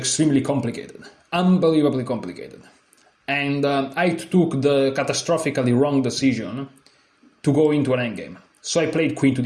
complicated, unbelievably complicated. And I took the catastrophically wrong decision to go into an endgame. So I played queen to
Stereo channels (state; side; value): identical; both; correlation 1.00